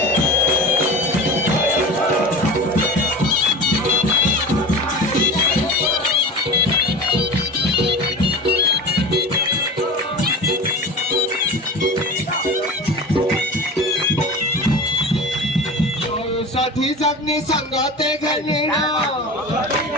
ষাঠি জগ্নি সঙ্গতে ঘনিণ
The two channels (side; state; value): both; normal; correlation 0.31